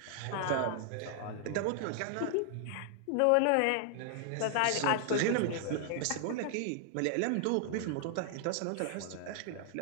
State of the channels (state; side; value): different; both; correlation 0.00